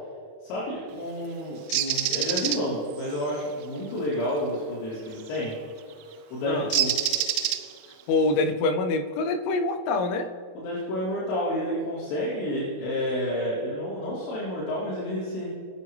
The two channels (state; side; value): late; right; 27 ms